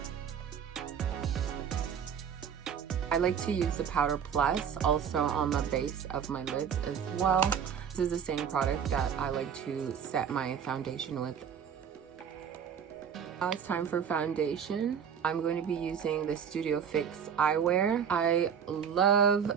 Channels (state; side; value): quieter; left; 7.7 dB